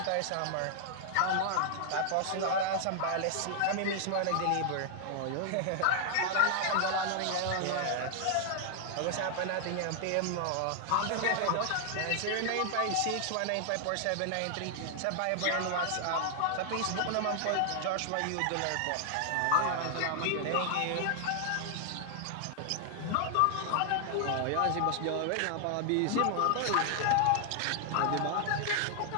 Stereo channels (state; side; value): different; both; correlation 0.00